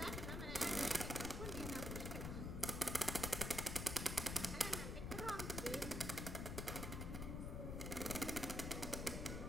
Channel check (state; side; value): noise; left; rumble, 3 dB below the sound